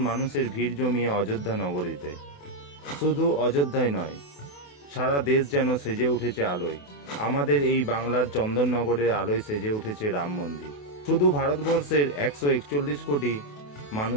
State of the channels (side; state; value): right; late; 28 ms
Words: মানুষের ভিড় জমিয়ে অযোধ্যা নগরীতে। শুধু অযোধ্যায় নয়, সারা দেশ যেন সেজে উঠেছে আলোয়। আমাদের এই বাংলার চন্দননগরের আলোয় সেজে উঠেছে রাম মন্দির। শুধু ভারতবর্ষের 141 কোটি